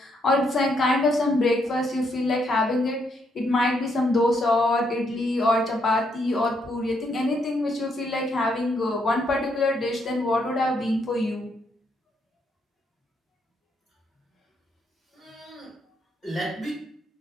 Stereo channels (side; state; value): both; normal; correlation 0.75